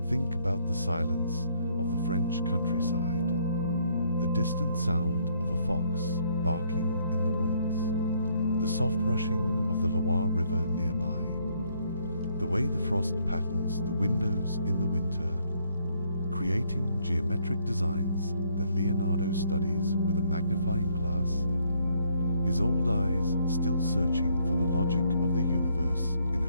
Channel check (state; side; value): inverted; both; correlation -0.68